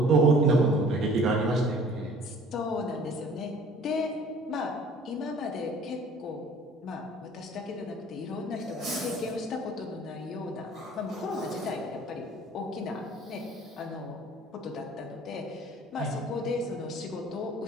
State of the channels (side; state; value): both; normal; correlation 0.50